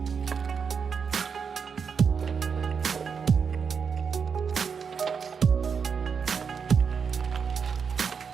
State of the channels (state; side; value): quieter; left; 6.2 dB